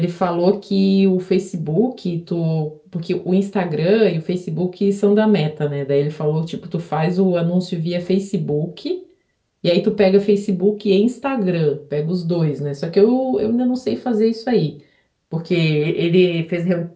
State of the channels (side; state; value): both; identical; correlation 1.00